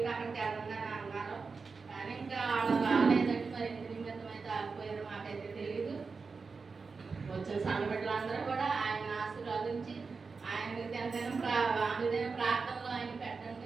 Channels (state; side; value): quieter; left; 4.7 dB